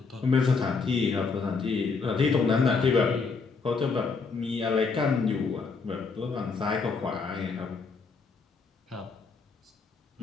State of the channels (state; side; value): quieter; right; 4.7 dB